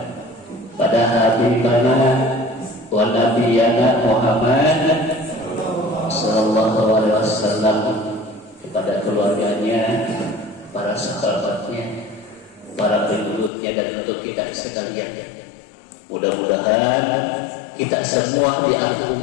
pada habibana wa nabiyana Muhammad sallallahu alaihi wasallam, kepada keluarganya, para sahabatnya, para pengikutnya, dan untuk kita sekalian. Mudah-mudahan kita semua di akhir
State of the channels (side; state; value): right; drops out; at 13.5 s